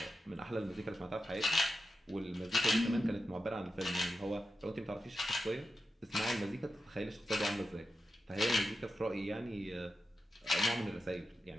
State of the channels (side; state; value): both; normal; correlation 0.90